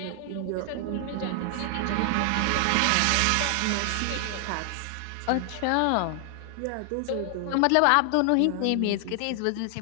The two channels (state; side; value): different; both; correlation 0.00